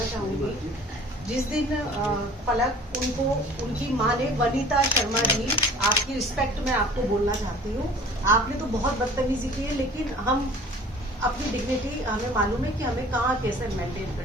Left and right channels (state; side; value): normal; both; correlation 0.47